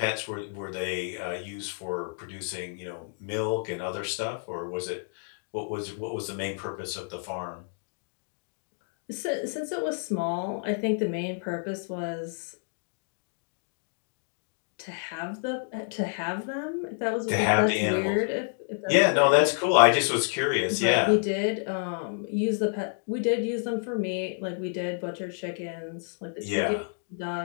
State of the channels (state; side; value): silent; right; digital silence